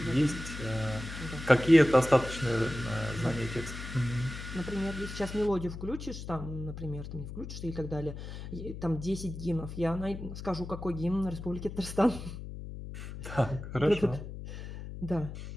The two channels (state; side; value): noise; left; hum, 9 dB below the sound